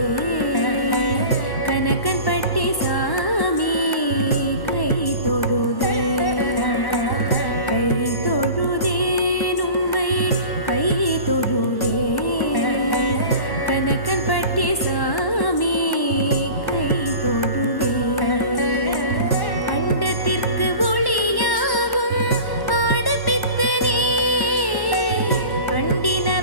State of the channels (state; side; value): late; right; 1.1 ms